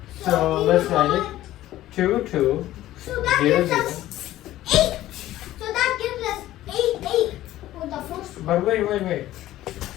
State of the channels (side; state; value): right; quieter; 14.6 dB